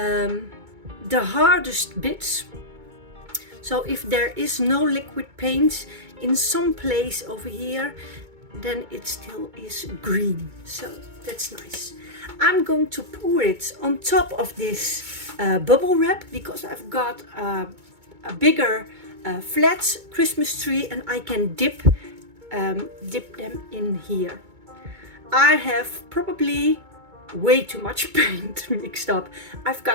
hardest bits. So if there is no liquid paint in some place over here, then it still is green. So that's nice. I'm going to pour it on top of this bubble wrap because I've got a bigger flat Christmas tree and I can dip them in here. I have probably way too much paint mixed up. I've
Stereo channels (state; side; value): late; left; 2.2 ms